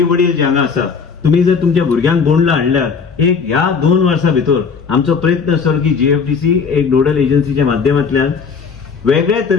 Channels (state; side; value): quieter; right; 5.6 dB